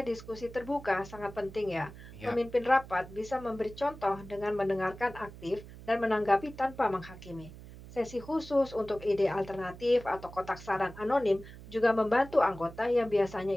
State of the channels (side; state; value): right; noise; hum, 16 dB below the sound